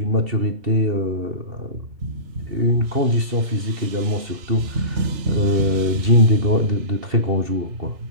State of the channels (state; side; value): late; left; 2.7 ms